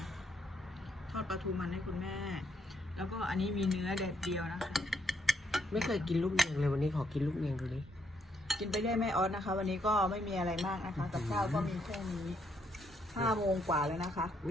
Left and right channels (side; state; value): both; normal; correlation 0.74